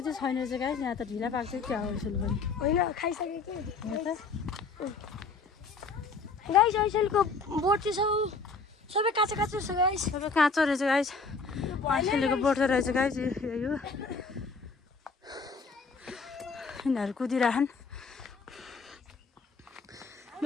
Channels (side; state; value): right; quieter; 4.3 dB